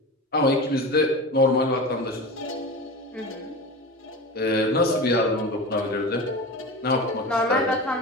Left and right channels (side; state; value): both; normal; correlation 0.29